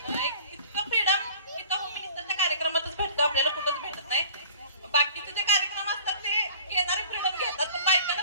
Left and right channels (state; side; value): inverted; both; correlation -0.45